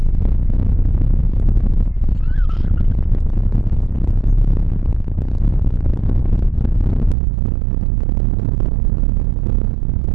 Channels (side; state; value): left; drops out; at 7.2 s